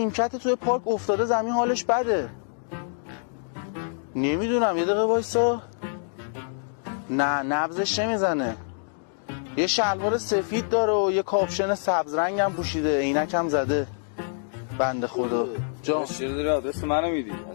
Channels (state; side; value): silent; right; digital silence